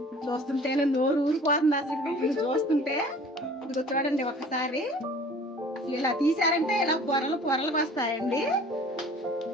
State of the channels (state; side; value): normal; both; correlation 0.48